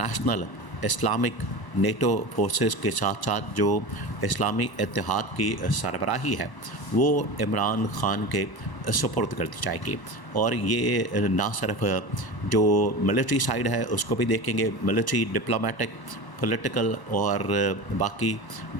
اسلامک نیٹو فورسز کے ساتھ ساتھ جو اسلامی اتحاد کی سربراہی ہے وہ عمران خان کے سپرد کر دی جائے گی۔ اور یہ نہ صرف جو ملٹری سائیڈ ہے اس کو بھی دیکھیں گے، ملٹری، ڈپلومیٹک، پولیٹیکل اور باقی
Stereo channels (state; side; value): late; right; 1.0 ms